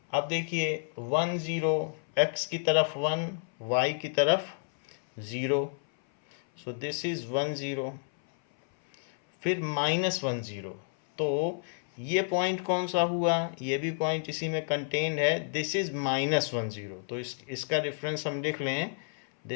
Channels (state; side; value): silent; right; 58 dB below the other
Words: अब देखिए 1 0, x की तरफ 1, y की तरफ 0, सो दिस इज 1 0, फिर -1 0, तो ये पॉइंट कौन सा हुआ? ये भी पॉइंट इसी में कंटेन्ड है, दिस इज -1 0, तो इसका रेफरेंस हम लिख लें,